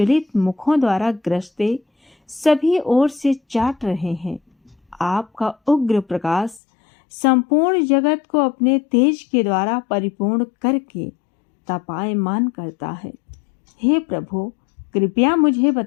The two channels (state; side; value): drops out; right; at 6.6 s